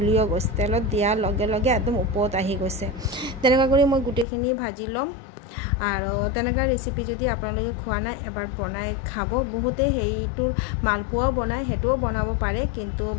গৈছে। তেলত দিয়াৰ লগে লগে একদম ওপৰত আহি গৈছে। তেনেকুৱা কৰি মই গোটেইখিনি ভাজি ল'ম। আৰু তেনেকুৱা ৰেচিপি যদি আপোনালোকে খোৱা নাই এবাৰ বনাই খাব। বহুতে সেইটোৰ মালপোৱাও বনায়, সেইটোও বনাব পাৰে। কিন্তু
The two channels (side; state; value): right; drops out; at 4.2 s